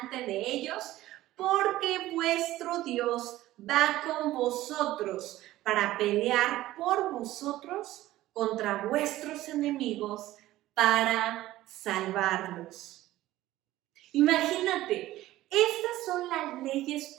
de ellos, porque vuestro Dios va con vosotros para pelear por vosotros contra vuestros enemigos para salvarlos. Imagínate, estas son las leyes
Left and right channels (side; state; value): left; quieter; 15.7 dB